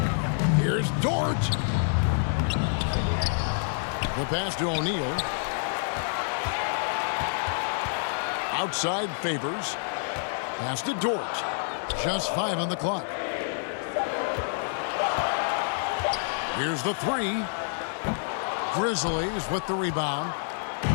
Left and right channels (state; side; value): silent; right; 60 dB below the other